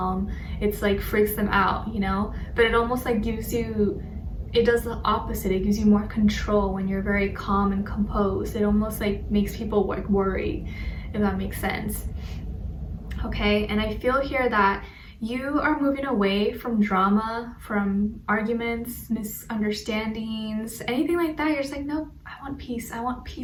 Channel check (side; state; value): both; identical; correlation 1.00